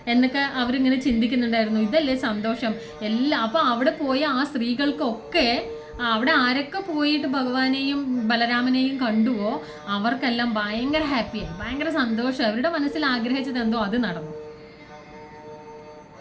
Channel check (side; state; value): both; identical; correlation 1.00